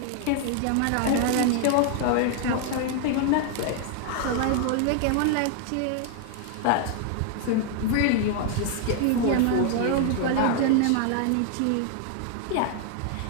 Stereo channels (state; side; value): different; both; correlation 0.00